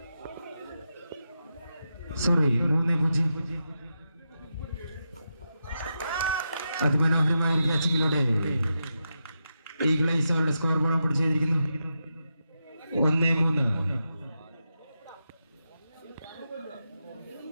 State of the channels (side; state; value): both; inverted; correlation -0.87